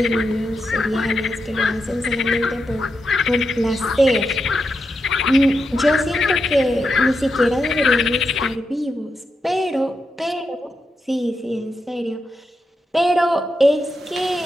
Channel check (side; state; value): both; normal; correlation 0.86